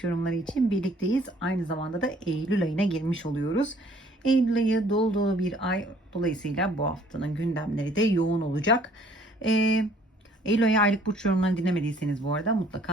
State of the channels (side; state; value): both; normal; correlation 0.59